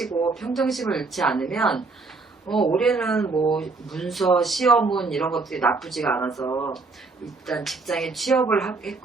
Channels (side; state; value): left; quieter; 3.9 dB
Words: 평정심을 잃지 않으면 올해는 뭐 문서, 시험운 이런 것들이 나쁘지가 않아서 일단 직장에 취업을